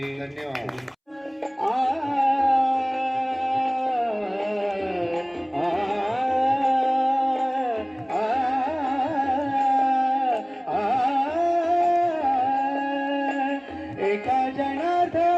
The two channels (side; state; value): both; identical; correlation 1.00